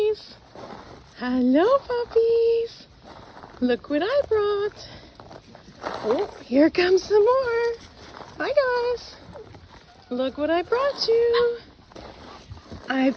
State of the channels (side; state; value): both; identical; correlation 1.00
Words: Hello, puppies. Look what I brought. Oh, here comes some more. Hi, guys. Look what I brought you. I